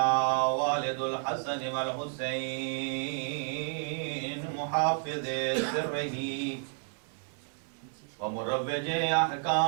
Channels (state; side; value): silent; left; 57 dB below the other